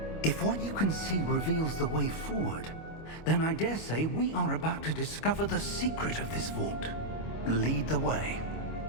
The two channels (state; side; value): late; right; 25 ms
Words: If what you can see reveals the way forward, then I dare say we are about to discover the secret of this vault. Lead the way.